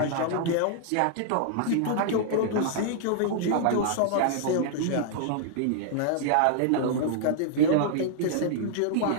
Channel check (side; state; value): both; different; correlation -0.01